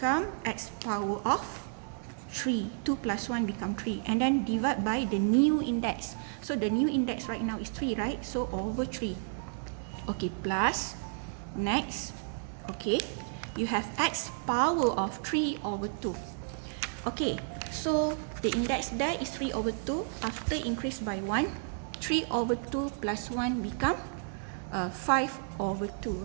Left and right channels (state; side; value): silent; left; digital silence